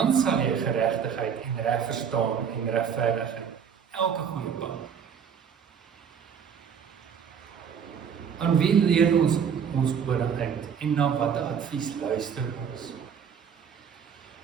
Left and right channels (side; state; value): left; quieter; 7.4 dB